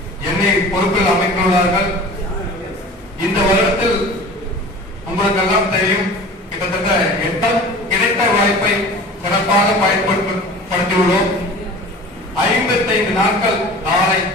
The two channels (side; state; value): both; normal; correlation 0.40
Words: என்னை பொறுப்பில் அமைத்துள்ளார்கள். இந்த வருடத்தில் உங்களுக்கெல்லாம் தெரியும், கிட்டத்தட்ட 8 கிடைத்த வாய்ப்பை சிறப்பாக பயன்படுத்தியுள்ளோம். 55 நாட்கள் நாளை